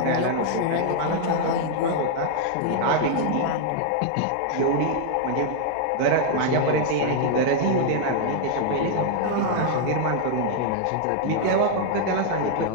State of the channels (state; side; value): different; both; correlation -0.01